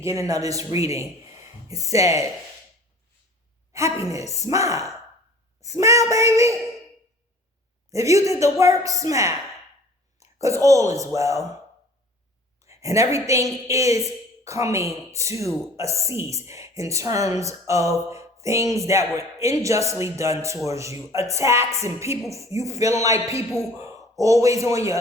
of this reading, it said, happiness, smile. Smile, baby. If you did the work, smile. Because all is well. And everything is coming to a cease in terms of things that were unjustly done towards you. Attacks and people, you feeling like people always on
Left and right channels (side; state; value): both; normal; correlation 0.47